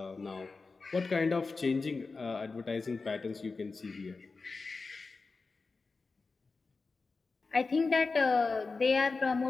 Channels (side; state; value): right; quieter; 4.1 dB